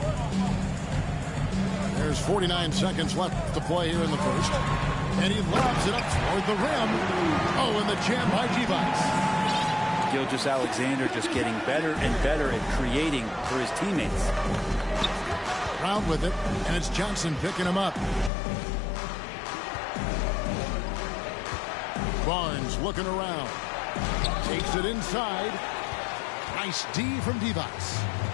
There's 49 seconds left to play here in the first. And he lobs it up toward the rim. Oh, and the jam by Device. Gilgeous-Alexander just getting better and better at creating for his teammates. Brown with it, and it's Johnson picking him up. Barnes looking around. Takes it inside. Nice D from Device.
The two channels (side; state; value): right; drops out; at 18.3 s